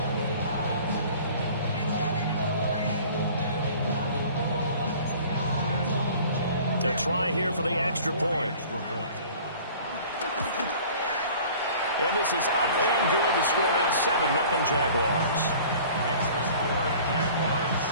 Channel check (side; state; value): both; inverted; correlation -0.47